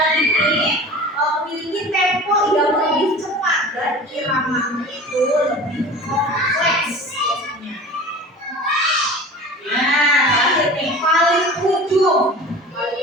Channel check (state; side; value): normal; both; correlation 0.38